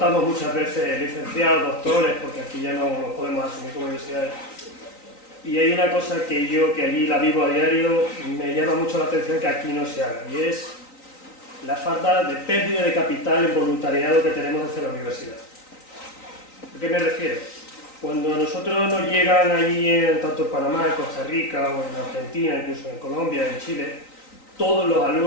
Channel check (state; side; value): late; right; 3.9 ms